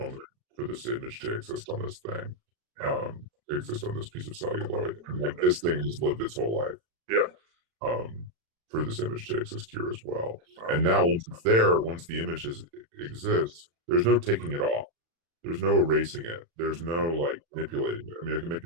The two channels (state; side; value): late; left; 36 ms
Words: for this image to exist on this thing, to exist on this piece of celluloid. And like this thing has lived its whole life. Yeah. For this image to exist here as well. And now once it's there, once the image exists, there's no taking it off. There's no erasing it. There's no like manipulating it. I can